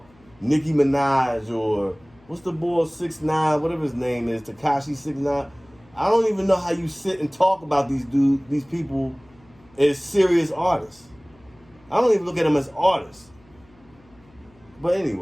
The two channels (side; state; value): left; noise; hum, 29 dB below the sound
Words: Nicki Minaj or what's the boy 6ix9ine, whatever his name is, Tekashi 6ix9ine. I don't even know how you sit and talk about these people as serious artists. I don't even look at them as artists. But